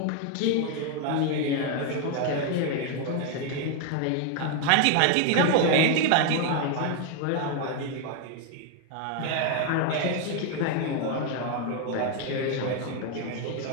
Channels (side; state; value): both; different; correlation 0.01